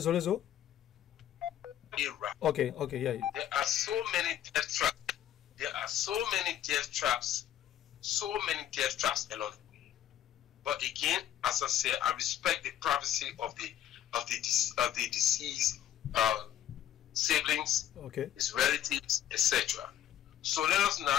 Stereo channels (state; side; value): quieter; right; 11.3 dB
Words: Okay, yeah. There are so many death traps. So many death traps along the way. But again, as I said, I respect the privacy of the deceased siblings, his relatives, etc. So let us